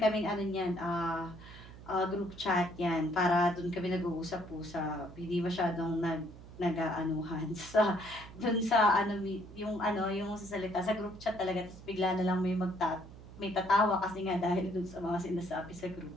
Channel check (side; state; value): right; noise; hum, 17 dB below the sound